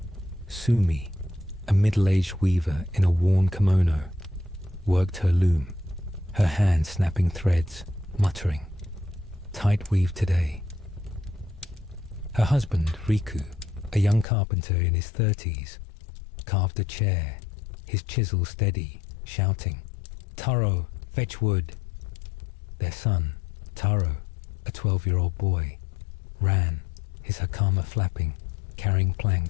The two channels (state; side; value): drops out; right; at 14.2 s